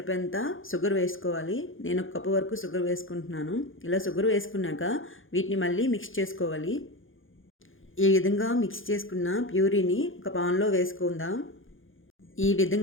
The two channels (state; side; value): late; right; 0.58 ms